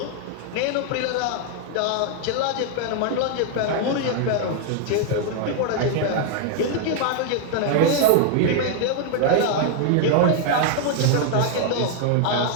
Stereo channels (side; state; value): both; different; correlation 0.00